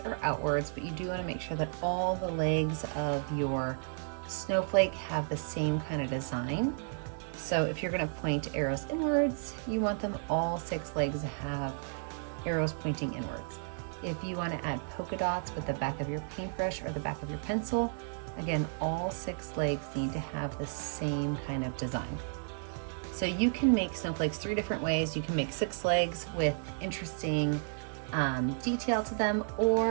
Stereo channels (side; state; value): left; silent; digital silence